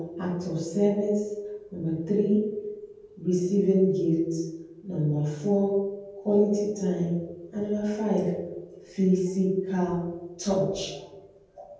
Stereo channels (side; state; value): both; identical; correlation 1.00